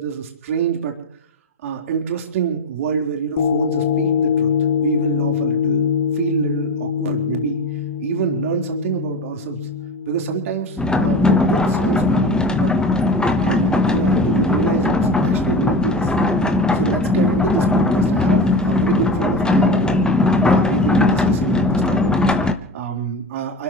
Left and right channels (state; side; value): normal; both; correlation 0.26